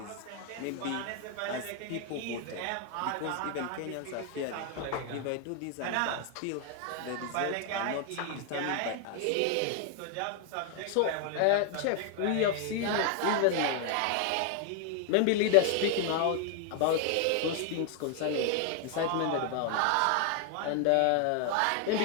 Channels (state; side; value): different; both; correlation 0.00